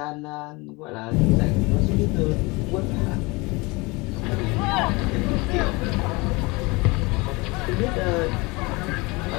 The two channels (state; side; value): quieter; right; 25.3 dB